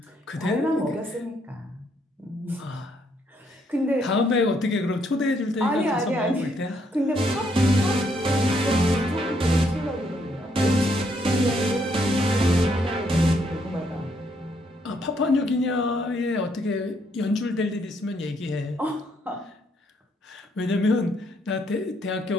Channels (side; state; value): both; normal; correlation 0.72